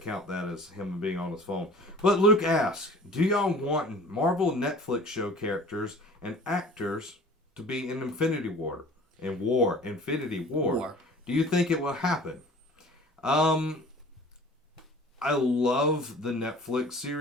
that as him being on his phone. But Luke asks, do y'all want Marvel Netflix show characters and actors to be in Infinity War? Infinity War. Do you think it will happen? I love the Netflix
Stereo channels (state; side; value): normal; both; correlation 0.45